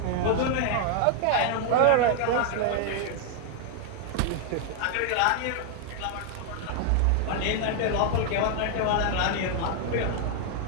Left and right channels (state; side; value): different; both; correlation 0.00